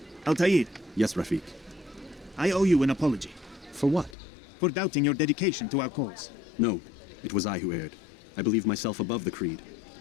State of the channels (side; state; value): right; drops out; at 4.2 s